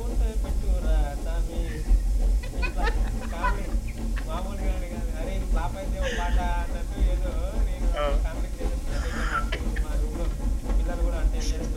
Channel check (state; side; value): identical; both; correlation 1.00